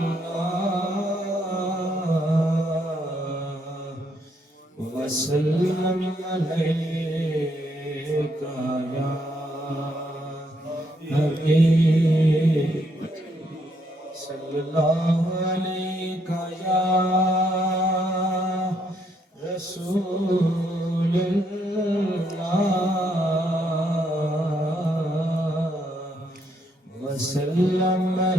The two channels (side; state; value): both; normal; correlation 0.73